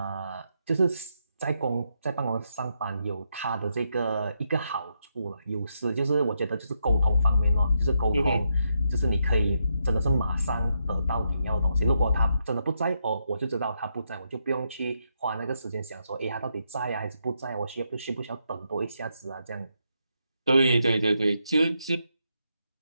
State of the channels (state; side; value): inverted; both; correlation -0.80